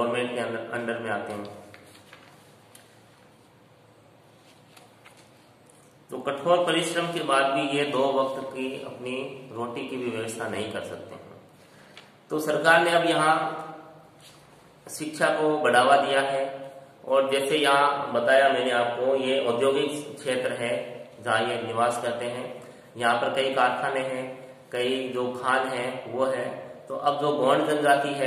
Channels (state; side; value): identical; both; correlation 1.00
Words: के अंडर में आते हैं। तो कठोर परिश्रम के बाद भी ये 2 वक्त की अपनी रोटी की भी व्यवस्था नहीं कर सकते हैं। तो सरकार ने अब यहाँ शिक्षा को बढ़ावा दिया है, और जैसे यहाँ बताया मैंने आपको, ये औद्योगिक क्षेत्र है जहाँ ये निवास करते हैं। यहाँ पर कई कारखाने हैं, कई जो खान हैं वो है। तो अब जो गौंड जनजाति